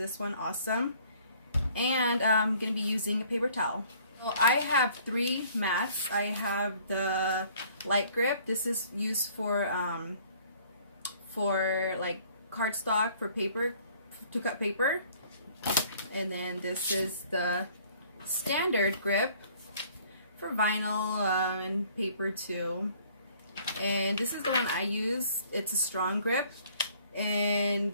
one, awesome. And I'm going to be using a paper towel. Well, I have 3 mats. I have the light grip. This is used for like cardstock, for paper, to cut paper. And then this is the standard grip for vinyl and paper too. And this is the one I use. It's a strong grip, and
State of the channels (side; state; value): both; inverted; correlation -0.57